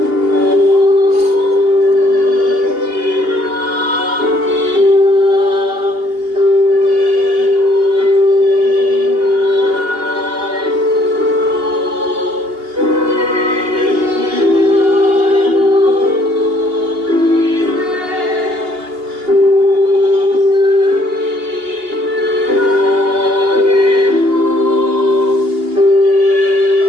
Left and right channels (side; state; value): left; late; 2.8 ms